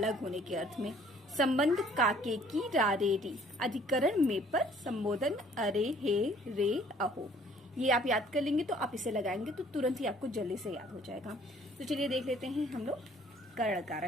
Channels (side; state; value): both; normal; correlation 0.58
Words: होने के अर्थ में। संबंध काके की रारे री, अधिकरण में पर, संबोधन अरे हे रे अहो। ये आप याद कर लेंगे तो आप इसे लगाएंगे तो तुरंत ही आपको जल्दी से याद हो जाएगा। तो चलिए देख लेते हैं हम लोग करण